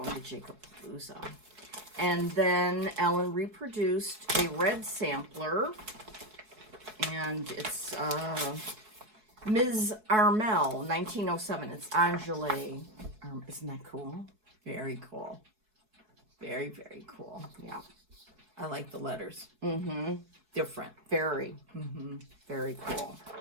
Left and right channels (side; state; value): left; late; 4.7 ms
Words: to Jacob Palooza. And then Ellen reproduced a red sampler, and it's Ms. Armel, 1907. It's Angele. Isn't that cool? Very cool. Very, very cool. Yeah. I like the letters. Mm-hmm. Different. Very. Mm-hmm. Very cool.